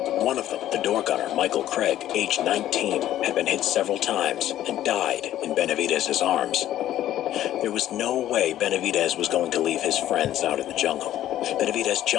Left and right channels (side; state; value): right; quieter; 12.7 dB